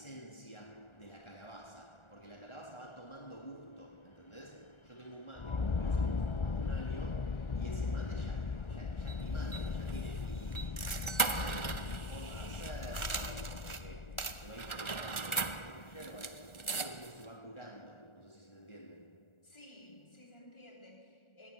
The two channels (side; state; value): right; late; 1.4 ms